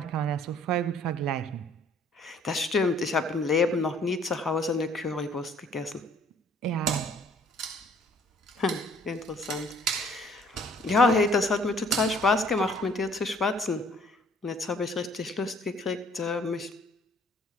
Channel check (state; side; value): normal; both; correlation 0.58